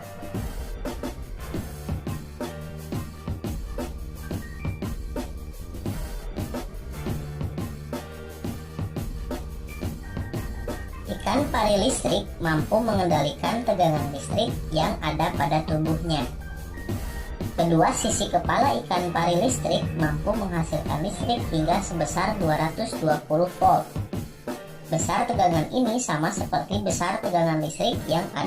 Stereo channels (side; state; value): both; identical; correlation 1.00